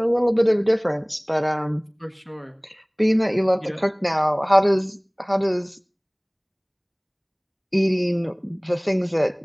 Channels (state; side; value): identical; both; correlation 1.00